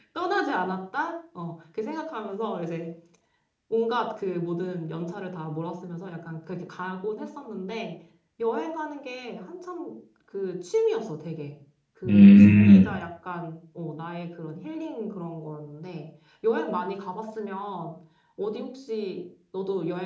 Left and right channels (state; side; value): identical; both; correlation 1.00